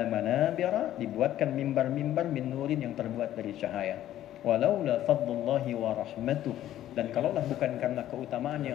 manabira, dibuatkan mimbar-mimbar min nurin yang terbuat dari cahaya. Walaula fadlullahi wa rahmatuh, dan kalaulah bukan karena keutamaan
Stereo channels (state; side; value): quieter; right; 12.6 dB